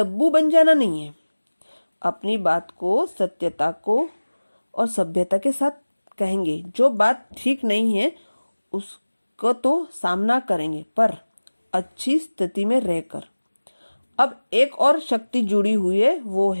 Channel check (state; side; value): inverted; both; correlation -1.00